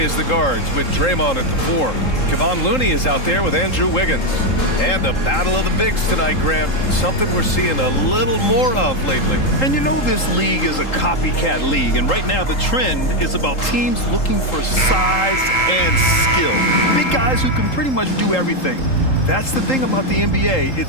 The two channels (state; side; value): late; right; 3.8 ms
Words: as the guards with Draymond at the 4. Kevon Looney is out there with Andrew Wiggins. And a battle of the bigs tonight, Grant. Something we're seeing a little more of lately. And you know this league is a copycat league, and right now the trend is about teams looking for size and skill. Big guys who can pretty much do everything. That's the thing about the NBA.